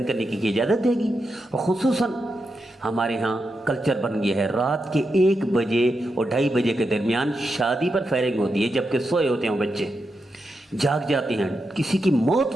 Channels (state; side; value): normal; both; correlation 0.86